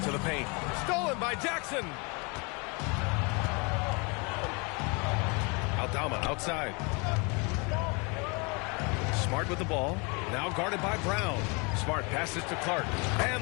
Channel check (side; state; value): right; quieter; 30.7 dB